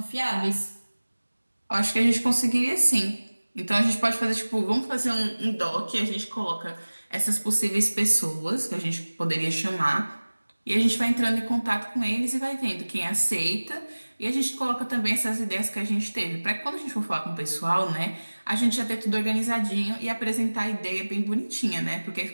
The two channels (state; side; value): inverted; both; correlation -1.00